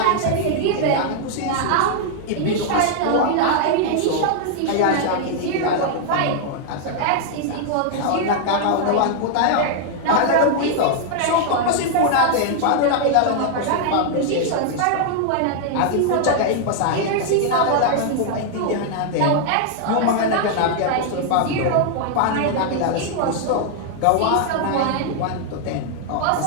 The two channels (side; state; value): both; different; correlation 0.00